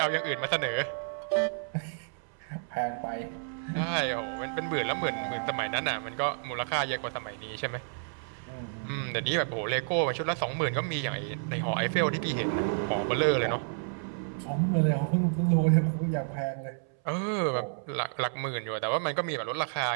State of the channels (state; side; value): silent; left; 58 dB below the other